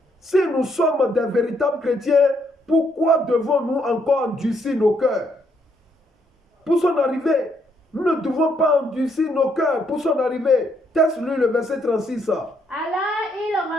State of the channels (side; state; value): both; normal; correlation 0.73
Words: Si nous sommes des véritables chrétiens, pourquoi devons-nous encore endurcir nos cœurs? Pour son arrivée, nous ne devons pas endurcir nos cœurs pour son arrivée. Teste-lui le verset 36. Alors il